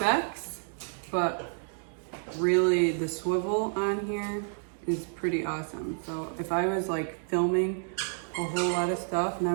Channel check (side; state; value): left; silent; digital silence